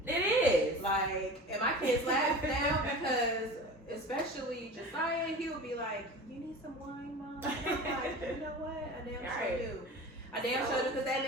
It is. Like, and my kids laugh now because, especially Josiah, he'll be like, "You need some wine, Mom?" And I'm like, "You know what? I damn sure do. I damn sure do, because that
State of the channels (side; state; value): both; normal; correlation 0.35